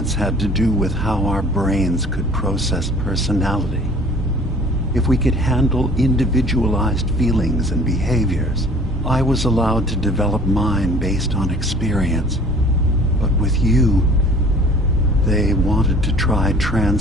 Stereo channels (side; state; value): both; normal; correlation 0.50